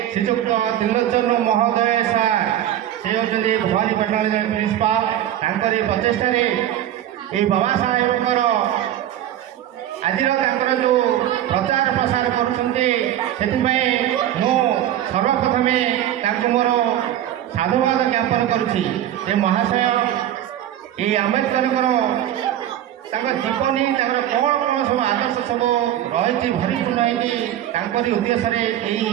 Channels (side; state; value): left; quieter; 11.8 dB